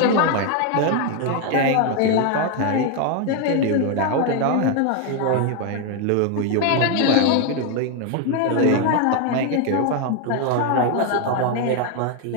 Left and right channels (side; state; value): both; different; correlation 0.01